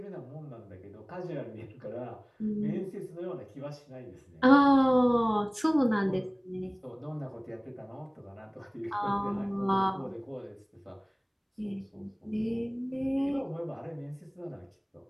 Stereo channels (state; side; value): identical; both; correlation 1.00